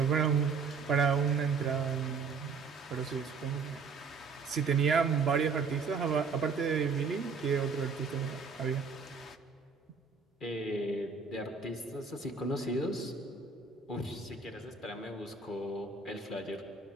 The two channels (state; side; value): quieter; left; 5.0 dB